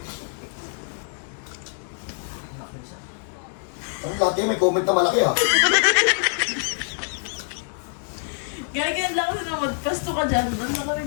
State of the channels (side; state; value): right; silent; 62 dB below the other